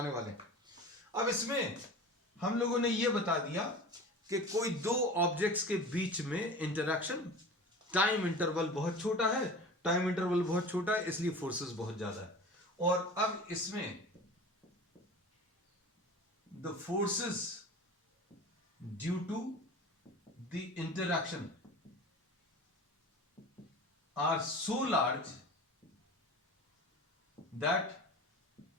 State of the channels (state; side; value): normal; both; correlation 0.36